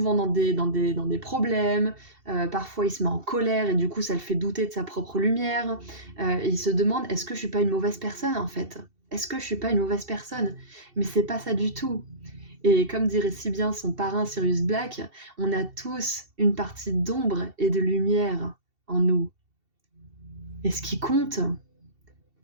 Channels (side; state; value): left; late; 2.7 ms